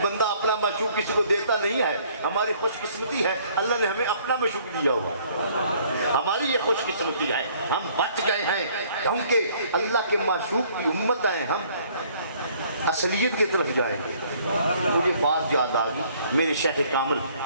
بندہ اپنا معشوق کسی کو دیتا نہیں ہے ہماری خوش قسمتی ہے اللہ نے ہمیں اپنا معشوق دیا ہوا ہماری یہ خوش قسمتی ہے ہم بچ گئے ہیں کیونکہ اللہ کے معشوق کی امت ہیں ہم اصلیت کی طرف جائیں گے مجھے بات یاد آ گئی میرے شیخ کامل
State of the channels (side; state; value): both; inverted; correlation -0.60